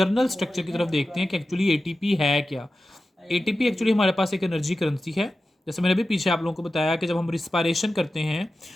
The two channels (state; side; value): normal; both; correlation 0.93